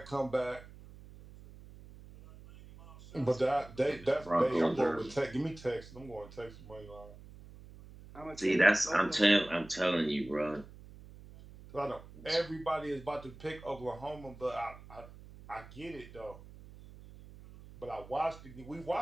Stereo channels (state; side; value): noise; right; hum, 18 dB below the sound